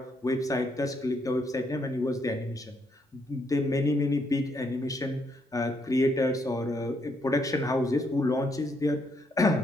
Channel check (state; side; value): normal; both; correlation 0.74